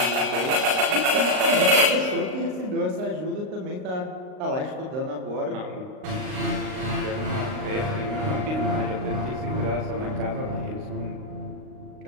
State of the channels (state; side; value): late; left; 38 ms